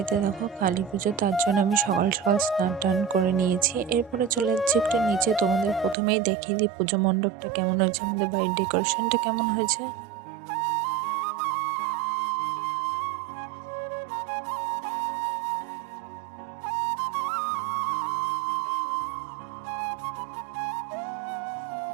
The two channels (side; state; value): left; drops out; at 6.0 s